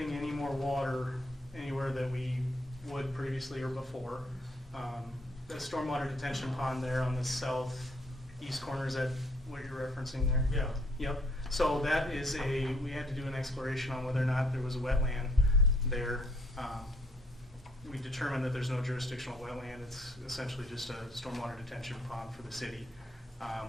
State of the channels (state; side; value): normal; both; correlation 0.65